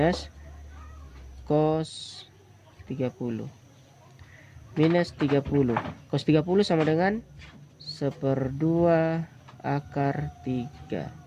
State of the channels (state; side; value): identical; both; correlation 1.00